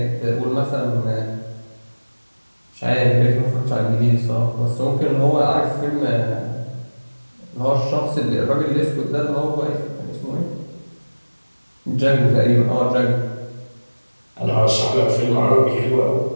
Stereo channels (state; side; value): inverted; both; correlation -1.00